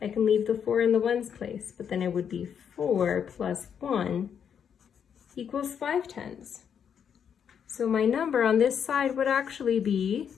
I can leave the 4 in the ones place, but then it would be 4 plus 1 equals 5 tens. So my number on this side would actually be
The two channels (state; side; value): quieter; right; 7.8 dB